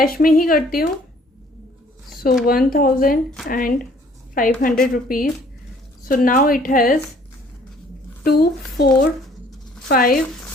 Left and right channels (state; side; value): normal; both; correlation 0.58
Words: में ही करती हूँ। So 1500 rupees. So now it has 2, 4, 5,